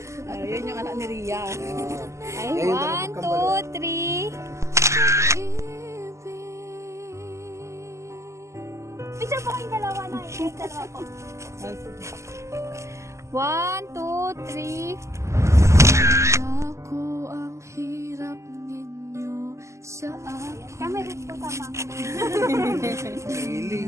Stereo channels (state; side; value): late; left; 0.14 ms